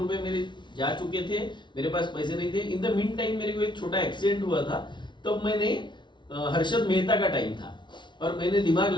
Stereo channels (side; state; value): right; late; 0.23 ms